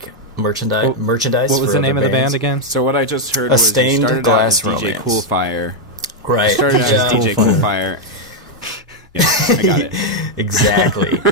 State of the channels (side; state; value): both; normal; correlation 0.00